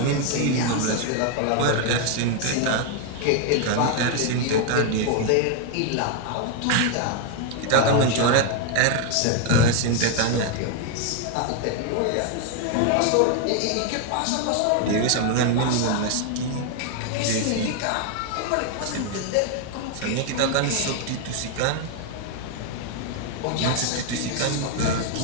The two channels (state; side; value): different; both; correlation 0.01